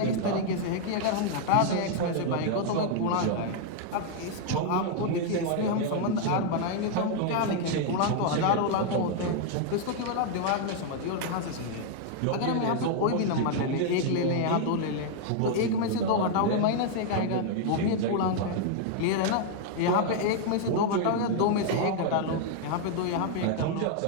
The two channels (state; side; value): different; both; correlation 0.00